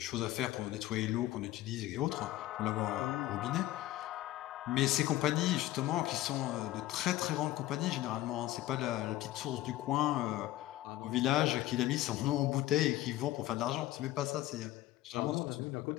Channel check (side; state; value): right; quieter; 15.4 dB